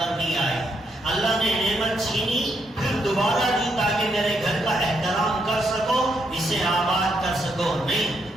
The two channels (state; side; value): normal; both; correlation 0.78